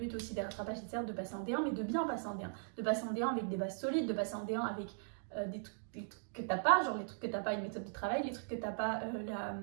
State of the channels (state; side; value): silent; left; digital silence